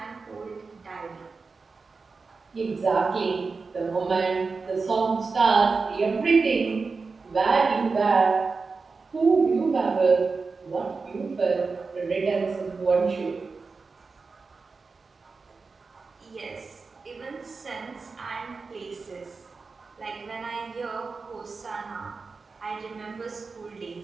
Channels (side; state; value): left; quieter; 4.4 dB